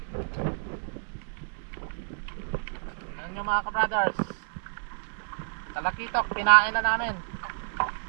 Ano nyo mga ka-brothers? Talakitok, pinain na namin.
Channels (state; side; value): silent; left; digital silence